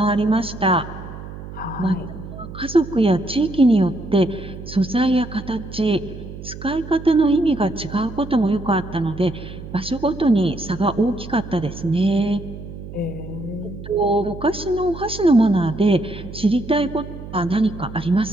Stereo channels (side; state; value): right; noise; hum, 12 dB below the sound